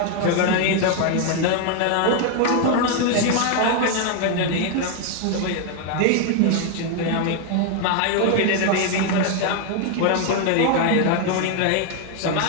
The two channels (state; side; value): different; both; correlation 0.01